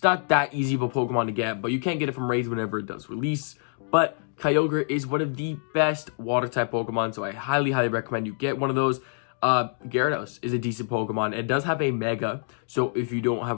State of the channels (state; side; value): silent; right; 61 dB below the other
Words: not that easy of a Pokemon to get, but you can get it from raids whenever it does release. But Kyogre is one of the best water type Pokemon, so I highly recommend you get one of those. Gyarados is a decent Pokemon. It does have a Mega, so if you don't